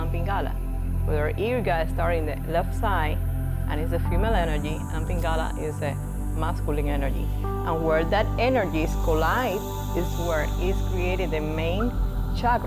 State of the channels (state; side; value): identical; both; correlation 1.00